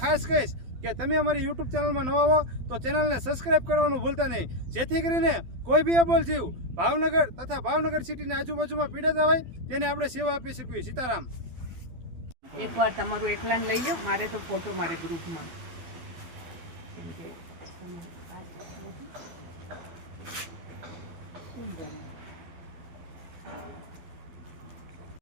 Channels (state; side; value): late; left; 12 ms